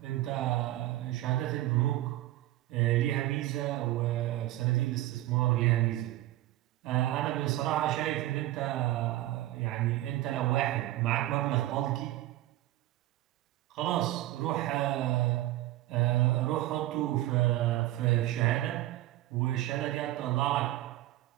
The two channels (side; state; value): left; quieter; 15.6 dB